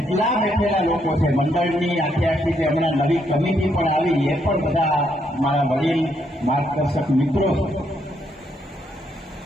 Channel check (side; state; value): both; normal; correlation 0.75